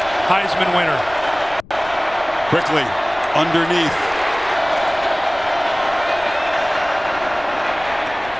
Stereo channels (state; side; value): noise; left; rumble, 20 dB below the sound